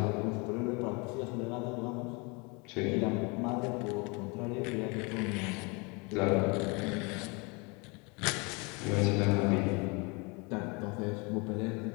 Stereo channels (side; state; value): right; quieter; 29.5 dB